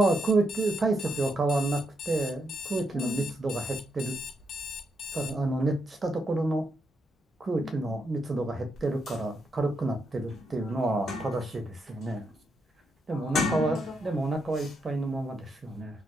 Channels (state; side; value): normal; both; correlation 0.81